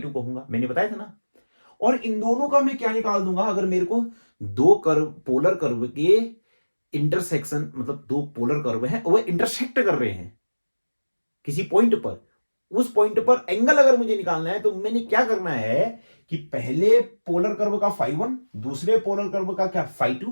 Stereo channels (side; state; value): both; inverted; correlation -1.00